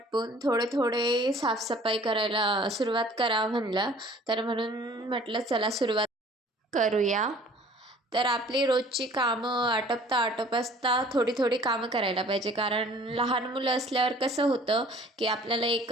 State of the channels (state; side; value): normal; both; correlation 0.51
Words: थोडे थोडे साफसफाई करायला सुरुवात करावं म्हणलं. तर म्हणून म्हटलं चला सुरुवात करूया. तर आपली रोजची कामं आटपता थोडी थोडी कामं करायला पाहिजे, कारण लहान मुलं असल्यावर कसं होतं की आपल्याला